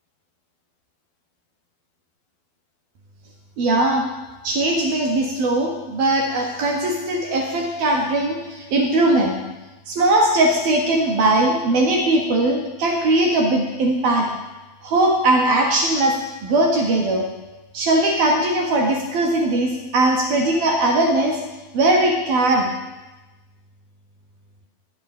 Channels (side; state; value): left; late; 12 ms